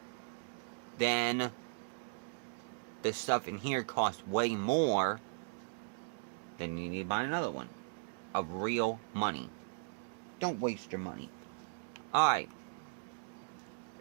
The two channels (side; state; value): left; silent; digital silence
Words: Then the stuff in here costs way more. Then you need to buy another one of real money. Don't waste your money. Alright.